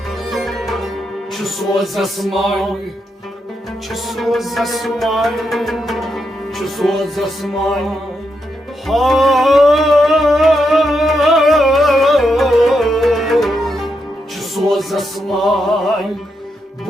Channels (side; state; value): both; normal; correlation 0.83